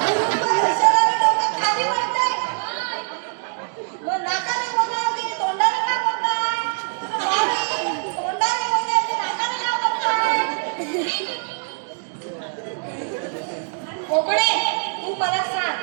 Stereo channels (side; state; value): left; silent; 64 dB below the other